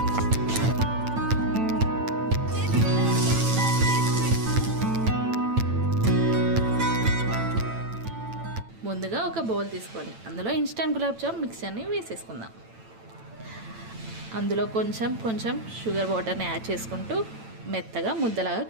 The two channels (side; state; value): left; late; 9.0 ms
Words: ముందుగా ఒక బౌల్ తీసుకొని అందులో ఇన్స్టెంట్ గులాబ్ జామ్ మిక్చర్ని వేసేసుకుందాం. అందులో కొంచెం షుగర్ వాటర్ని యాడ్ చేసుకుంటూ మెత్తగా ముద్దలాగా